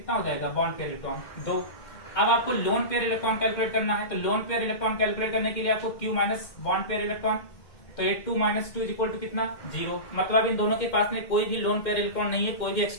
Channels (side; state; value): right; late; 2.1 ms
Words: हो जाएगा, बॉन्ड पेयर इलेक्ट्रॉन 2। अब आपको लोन पेयर इलेक्ट्रॉन कैलकुलेट करना है। तो लोन पेयर इलेक्ट्रॉन कैलकुलेट करने के लिए आपको Q minus bond pair electron, तो ये 2 माइनस 2 इक्वल टू कितना 0। मतलब इन दोनों के पास में कोई भी लोन पेयर इलेक्ट्रॉन नहीं है, कोई भी